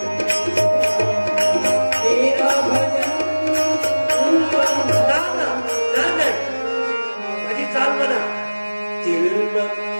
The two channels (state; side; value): inverted; both; correlation -1.00